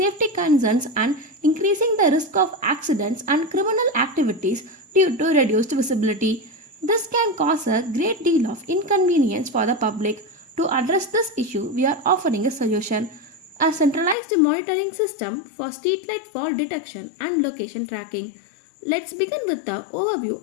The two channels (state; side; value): drops out; right; at 14.2 s